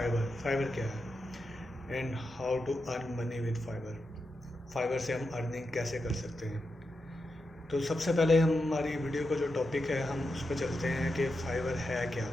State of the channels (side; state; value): both; normal; correlation 0.87